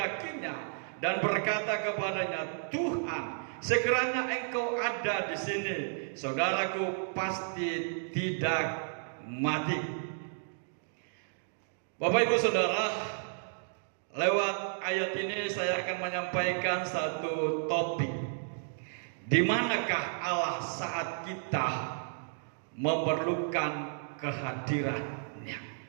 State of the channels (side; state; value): left; silent; digital silence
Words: dan berkata kepadanya, Tuhan, sekiranya Engkau ada di sini, saudaraku pasti tidak mati. Bapak Ibu Saudara, lewat ayat ini saya akan menyampaikan satu topik. Di manakah Allah saat kita memerlukan kehadirannya?